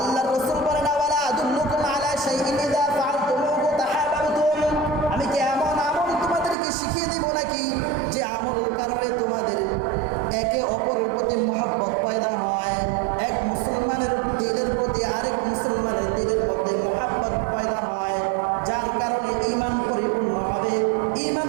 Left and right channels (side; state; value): left; drops out; at 6.6 s